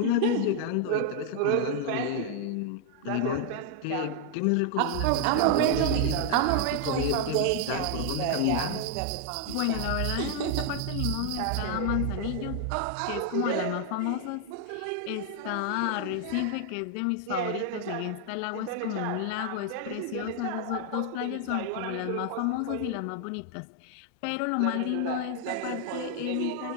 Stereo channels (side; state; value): both; different; correlation 0.00